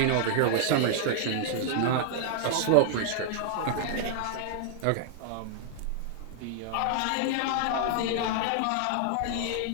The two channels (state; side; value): different; both; correlation -0.01